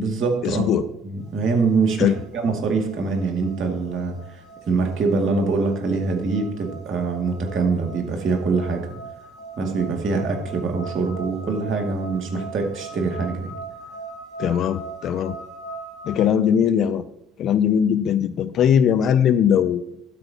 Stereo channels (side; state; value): both; normal; correlation 0.58